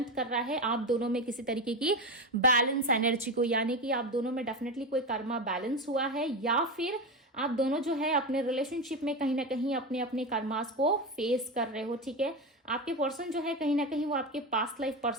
कर रहा है आप दोनों में किसी तरीके की बैलेंस एनर्जी को, यानी कि आप दोनों में डेफिनेटली कोई कर्मा बैलेंस हुआ है, या फिर आप दोनों जो है अपने रिलेशनशिप में कहीं ना कहीं अपने अपने कर्मास को फेस कर रहे हो, ठीक है। आपके पर्सन जो है कहीं ना कहीं वो आपके पास्ट लाइफ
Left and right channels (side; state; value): both; normal; correlation 0.18